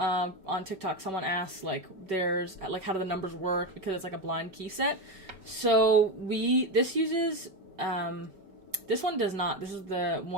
TikTok, someone asked, like, how do the numbers work, because it's like a blind key set. So this uses, this one does not. This is the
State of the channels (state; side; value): late; left; 5.2 ms